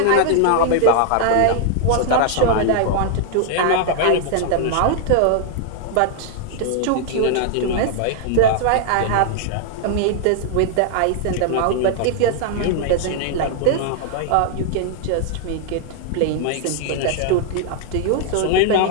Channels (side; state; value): both; different; correlation -0.01